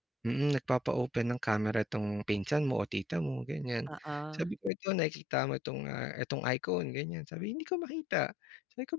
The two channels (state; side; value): drops out; right; at 4.7 s